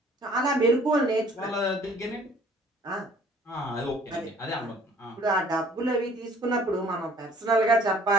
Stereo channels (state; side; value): normal; both; correlation 0.56